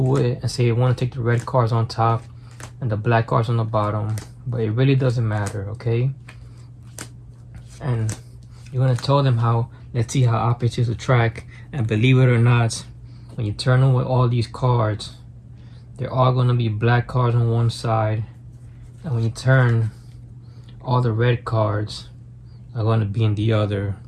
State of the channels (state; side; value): identical; both; correlation 1.00